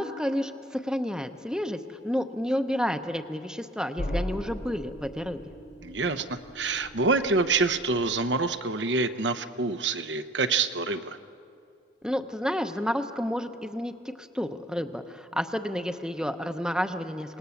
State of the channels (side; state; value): both; normal; correlation 0.52